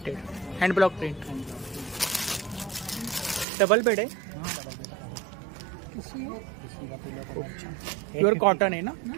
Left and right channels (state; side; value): drops out; left; at 3.5 s